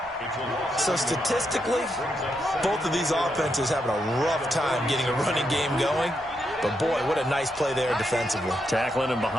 So statistically, both of these offenses having a rough time getting a running game going. But boy, what a nice play there defensively. Tackling him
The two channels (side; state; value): both; normal; correlation 0.82